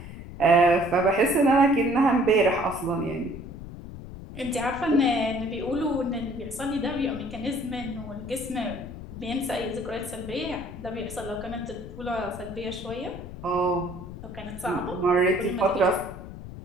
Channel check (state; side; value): noise; left; rumble, 12 dB below the sound